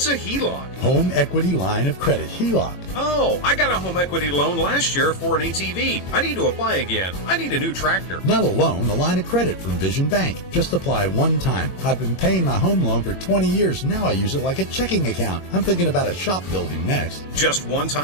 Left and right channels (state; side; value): late; right; 23 ms